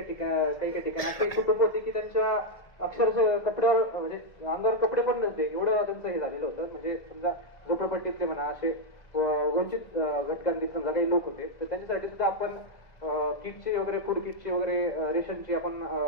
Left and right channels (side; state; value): right; late; 2.0 ms